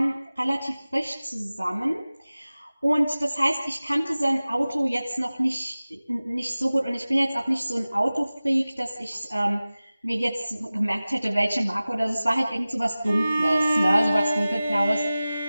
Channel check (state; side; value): inverted; both; correlation -0.97